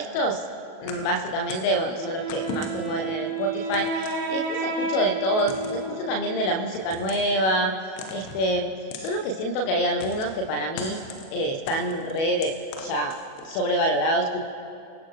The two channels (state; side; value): late; right; 37 ms